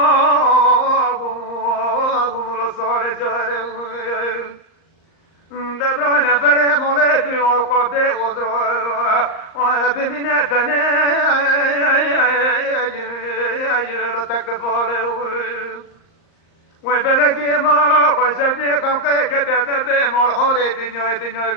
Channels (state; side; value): late; right; 38 ms